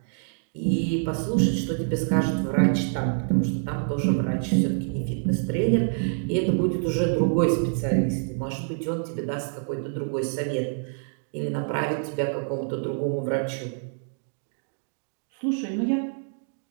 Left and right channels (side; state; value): left; silent; digital silence